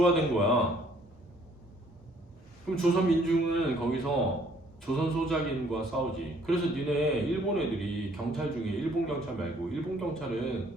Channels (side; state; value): both; normal; correlation 0.62